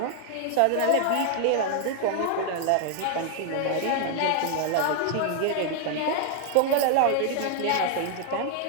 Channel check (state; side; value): different; both; correlation 0.00